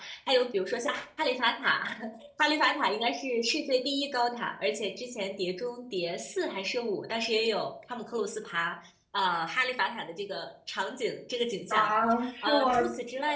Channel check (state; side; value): identical; both; correlation 1.00